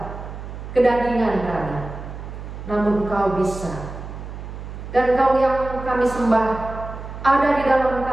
kedagingan kami, namun Engkau bisa. Dan Engkau yang kami sembah ada di dalam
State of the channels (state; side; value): noise; right; hum, 10 dB below the sound